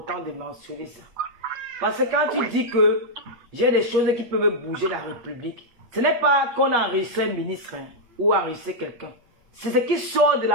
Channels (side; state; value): left; late; 8.0 ms